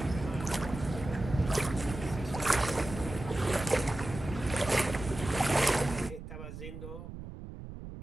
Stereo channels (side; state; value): right; noise; rumble, 11 dB below the sound